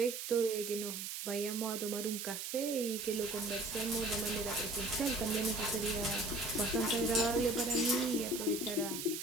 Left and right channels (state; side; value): noise; right; hiss, 5 dB below the sound